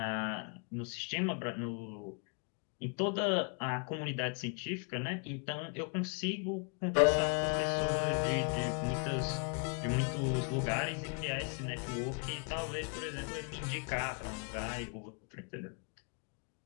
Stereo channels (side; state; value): right; quieter; 39.4 dB